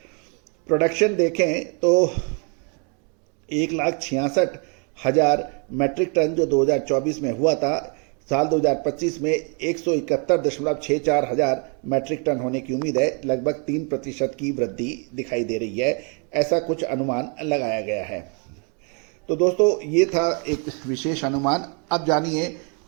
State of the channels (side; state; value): left; quieter; 37.1 dB